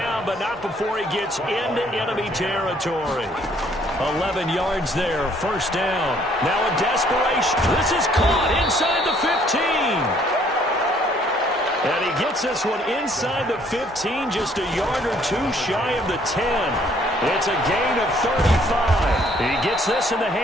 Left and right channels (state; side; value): normal; both; correlation 0.63